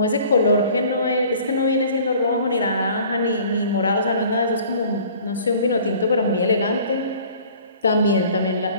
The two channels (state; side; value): inverted; both; correlation -0.50